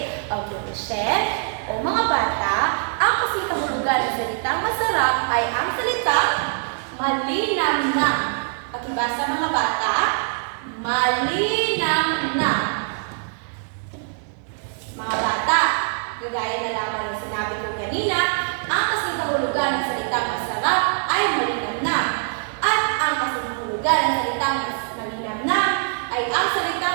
Okay, Michelle. O mga bata, ang kasing kahulugan ng salitang masarap ay ang salitang malinamnam. Pakibasa mga bata. Malinamnam. Mga bata, gagaya na lamang ng sinabi ko kanina, ang kasing kahulugan ng salitang masarap ay malinamnam. At ang kasing kahulugan ng salitang malinamnam ay ang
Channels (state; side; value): silent; left; digital silence